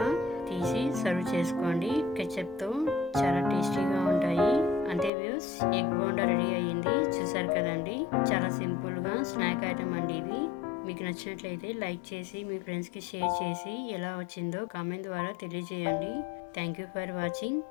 తీసి సర్వ్ చేసుకోండి. కెచప్తో చాలా టేస్టీగా ఉంటాయి. అంతే వ్యూస్, ఎగ్ బోండా రెడీ అయ్యింది. చూసారు కదండి, చాలా సింపుల్గా స్నాక్ ఐటమ్ అండి ఇది. మీకు నచ్చినట్లయితే లైక్ చేసి మీ ఫ్రెండ్స్కి షేర్ చేసి ఎలా వచ్చిందో కామెంట్ ద్వారా తెలియజేయండి. Thank you for watching.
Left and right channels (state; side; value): drops out; right; at 5.1 s